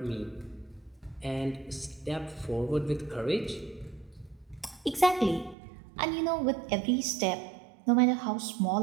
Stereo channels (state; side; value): drops out; left; at 5.6 s